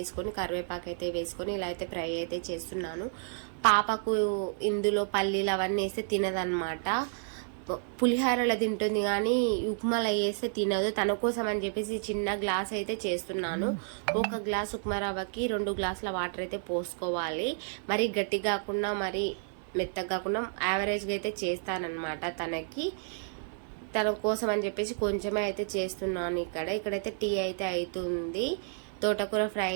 కరివేపాకు అయితే వేసుకొని ఇలా అయితే ఫ్రై అయితే చేస్తున్నాను. పాపకు ఇందులో పల్లీలు అవన్నీ వేస్తే తినదనమాట. పులిహోరలో తింటుంది కానీ ఉప్మాలో వేస్తే తినదు. తన కోసం అని చెప్పేసి చిన్న గ్లాస్ అయితే చేస్తున్నాను. ఒక గ్లాస్ ఉప్మా రవ్వకి 2 గ్లాసుల వాటర్ అయితే పోసుకోవాలి. మరి గట్టి కాకుండా మరి మెత్తగా కాకుండా యావరేజ్గా అయితే చేస్తానన్నమాట. తన కోసం అని చెప్పేసి కొంచెమే అయితే చేస్తున్నాను. ఇక్కడైతే టీ అయితే అవుతుంది. తోటకూర ఫ్రై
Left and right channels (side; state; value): left; silent; 57 dB below the other